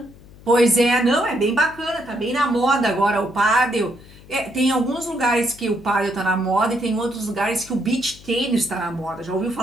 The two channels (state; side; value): noise; left; hum, 22 dB below the sound